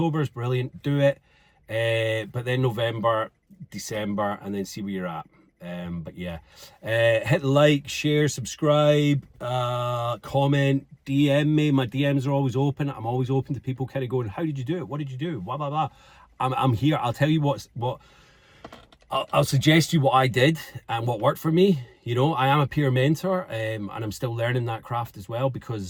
is brilliant. Do it. But then November, December, and then see where you're at. But yeah, hit like, share, subscribe, comment, DM me. My DMs are always open. I'm always open to people kind of going, how did you do it? What did you do? Blah, blah, blah. I'm here. I'll tell you what I'll suggest you what I did and what worked for me. You know, I am a peer mentor, and I'm still learning that craft as well,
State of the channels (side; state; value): both; identical; correlation 1.00